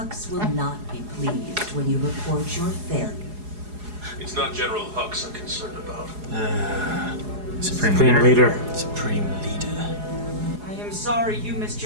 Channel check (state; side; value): late; left; 4.8 ms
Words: will not be pleased when you report your failure. It's not General Hux I'm concerned about. Supreme Supreme leader. Supreme leader. I am sorry you missed